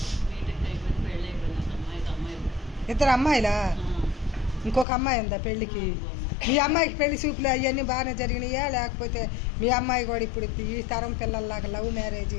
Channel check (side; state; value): right; drops out; at 4.9 s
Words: ఇద్దరు అమ్మాయిలా? ఇంకొక అమ్మాయి ఉందా పెళ్ళికి? మీ అమ్మాయికి పెళ్లి చూపులు అవన్నీ బాగానే జరిగినాయా, లేకపోతే మీ అమ్మాయి కూడా ఇప్పుడు ఈ తరం పిల్లల్లాగా లవ్